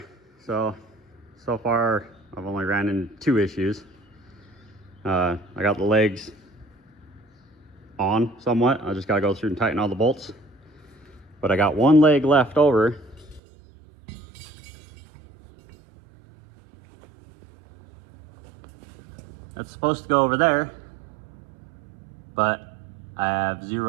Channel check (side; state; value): left; drops out; at 13.4 s